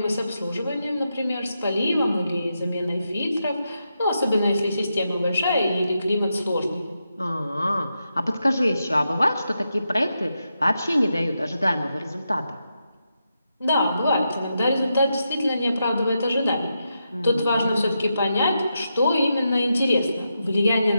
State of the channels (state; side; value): inverted; both; correlation -0.86